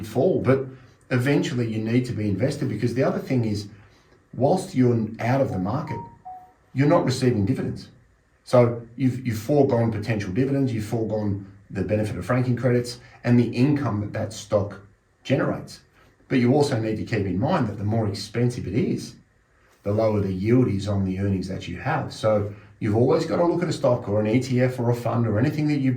fall. But eventually you need to be invested, because the other thing is, whilst you're out of the market, you're not receiving dividends. So you've foregone potential dividends, you've foregone the benefit of franking credits and the income that stock generates. But you also need to keep in mind that the more expensive it is, the lower the yield is on the earnings that you have. So you've always got to look at a stock or an ETF or a fund or anything that you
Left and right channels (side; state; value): both; identical; correlation 1.00